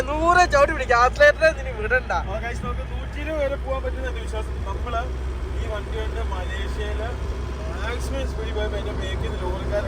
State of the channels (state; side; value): identical; both; correlation 1.00